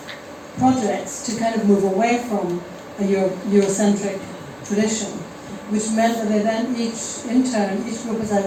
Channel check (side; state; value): both; identical; correlation 1.00